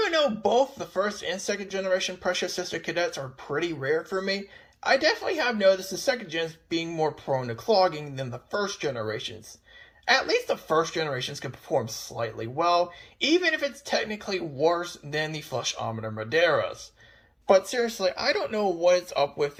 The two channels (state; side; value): identical; both; correlation 1.00